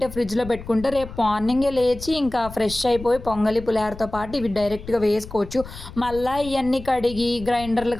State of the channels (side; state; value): left; noise; rumble, 14 dB below the sound